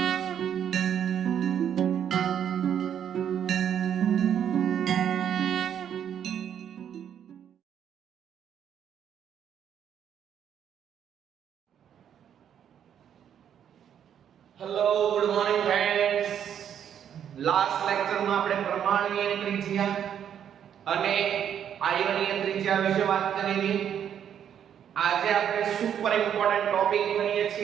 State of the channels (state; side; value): quieter; left; 9.1 dB